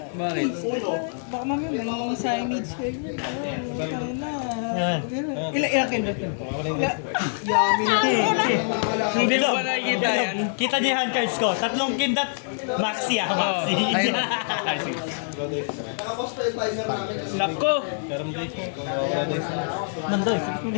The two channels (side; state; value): right; silent; 62 dB below the other